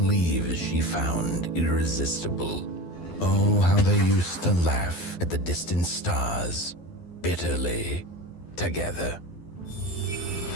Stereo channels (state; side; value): late; right; 12 ms